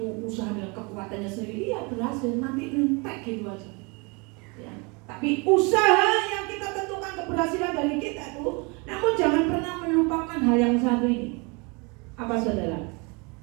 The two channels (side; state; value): left; quieter; 30.0 dB